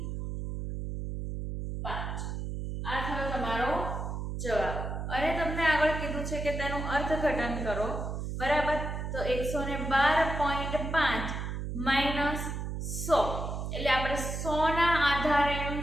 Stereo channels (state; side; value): noise; right; hum, 4 dB below the sound